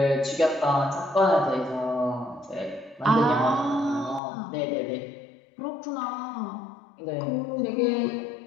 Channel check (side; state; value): right; drops out; at 4.2 s